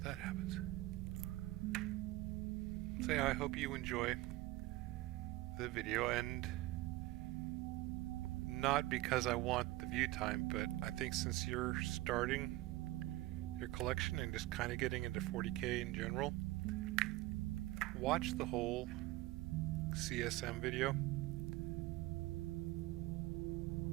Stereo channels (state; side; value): quieter; left; 17.9 dB